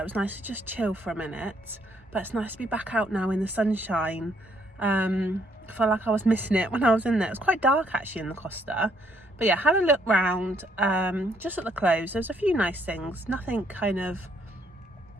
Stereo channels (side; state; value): both; normal; correlation 0.69